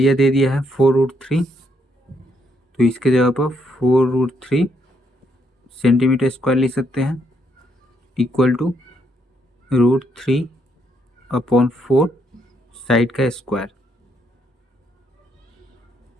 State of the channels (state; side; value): normal; both; correlation 0.73